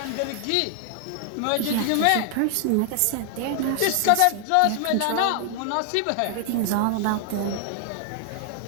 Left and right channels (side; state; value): both; different; correlation 0.00